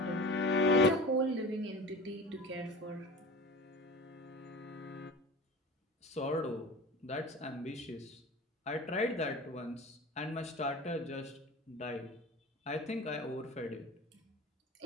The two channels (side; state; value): both; normal; correlation 0.35